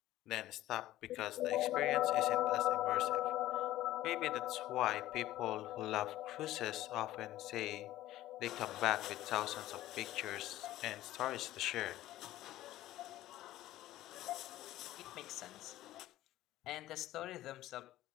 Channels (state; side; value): quieter; right; 14.9 dB